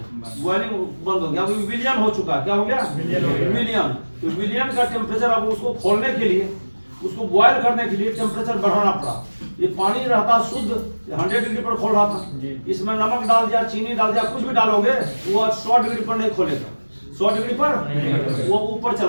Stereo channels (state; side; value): inverted; both; correlation -1.00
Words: बॉइलिंग बंद हो गया। अभी विलियन हो चुका है। क्या हो गया? विलियन। तो विलियन का टेम्परेचर, अब उसको खोलने के लिए, उसको बॉयल करने के लिए टेम्परेचर बढ़ाना पड़ा। ये पानी रहता शुद्ध 100 डिग्री पर खोल रहा था, इसमें नमक डाल दिया, चीनी डाल दिया, कुछ भी डालोगे वो 100 डिग्री पर नहीं खोलेगा। 100 डिग्री पर वो ऊपर